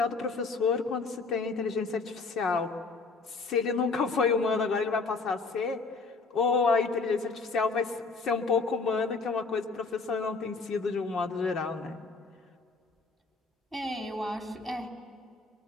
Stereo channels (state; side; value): quieter; right; 4.1 dB